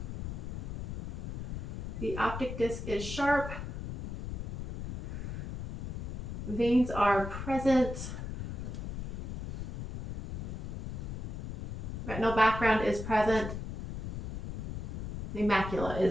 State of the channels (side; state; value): left; noise; rumble, 5 dB below the sound